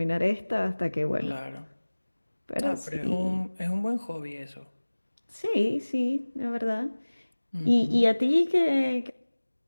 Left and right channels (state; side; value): inverted; both; correlation -1.00